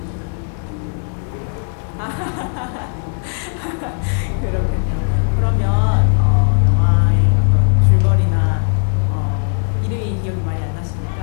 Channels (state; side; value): silent; right; 60 dB below the other